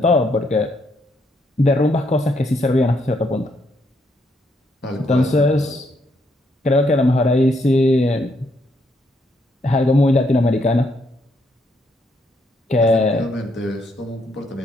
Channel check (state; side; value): normal; both; correlation 0.74